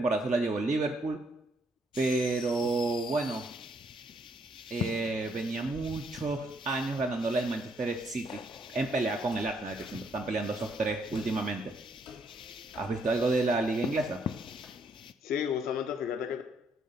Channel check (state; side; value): normal; both; correlation 0.71